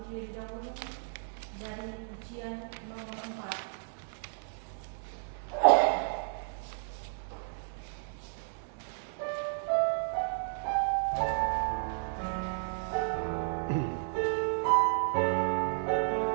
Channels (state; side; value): silent; left; digital silence